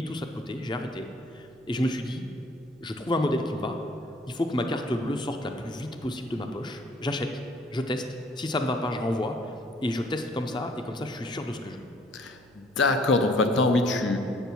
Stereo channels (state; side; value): noise; right; hum, 28 dB below the sound